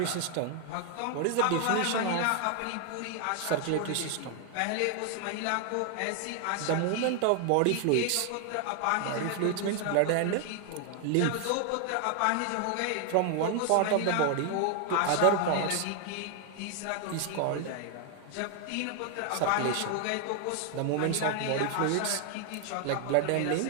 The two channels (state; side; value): different; both; correlation 0.00